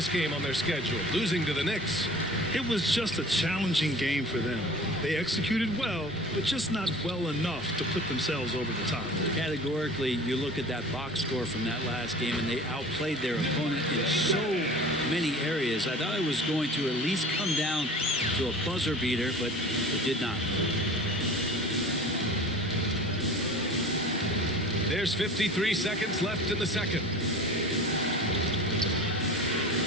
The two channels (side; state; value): both; normal; correlation 0.41